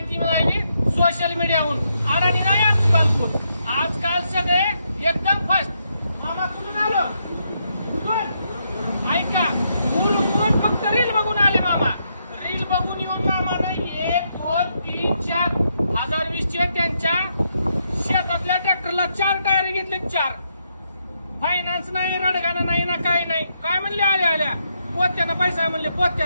मिळाली सोशल मीडियाहून. अडाणी नाही आजकाल. आजकाल सगळे एकदम फास्ट. मामा कुठून आलो? ऐका, कोण फक्त रील बघून आले मामा. रील बघून येऊन मामा नाही 1 2 3 4 2020 त्यांच्या शेतातल्या ट्रॅक्टरला 4 टायर घेतले. 4 फायनान्स नाही, रडगाणं नाही ना, काही नाही. काय म्हणले आल्या पोत्यानं पैसा म्हणले.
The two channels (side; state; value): both; inverted; correlation -0.79